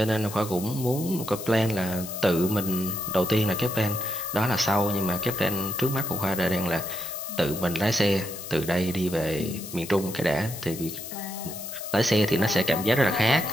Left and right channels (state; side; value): noise; left; hiss, 13 dB below the sound